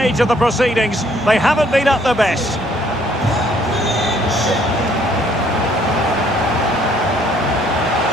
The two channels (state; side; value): normal; both; correlation 0.63